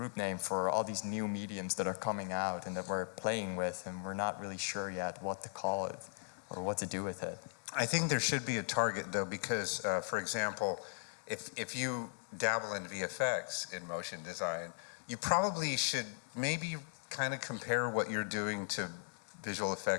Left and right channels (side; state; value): right; silent; digital silence